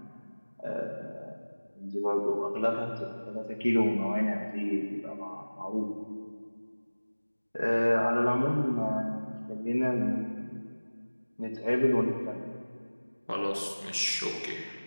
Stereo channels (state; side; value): inverted; both; correlation -1.00